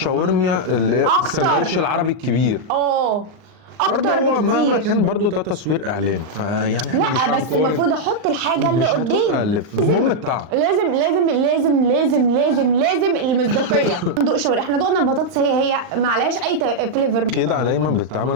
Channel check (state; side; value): late; left; 39 ms